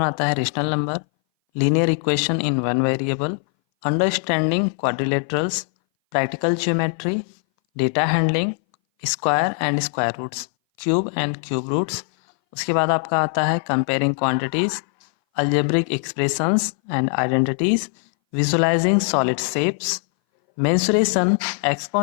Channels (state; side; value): silent; right; 60 dB below the other